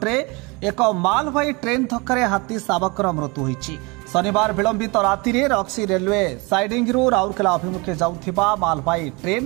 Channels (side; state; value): left; quieter; 27.3 dB